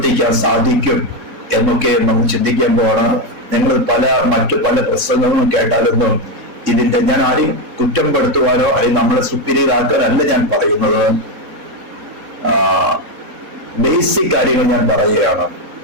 സാധിക്കും എന്നൊക്കെ നമ്മൾ ചിന്തിക്കാൻ പോവാണ്. ഞങ്ങൾ മറ്റു പല പ്രസംഗങ്ങളും കേട്ടാലൊന്നും ഇതിന്റെ ഞാൻ ആരെയും കുറ്റം പെടുത്തുവാനോ അല്ലെങ്കിൽ നമ്മളെ സുപ്പീരിയർ ആക്കാനല്ല ഞാൻ പറയുന്നത്. ബേസിക് കാര്യങ്ങൾ ഞാൻ പറയുകയാണ്.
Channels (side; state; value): left; late; 3.7 ms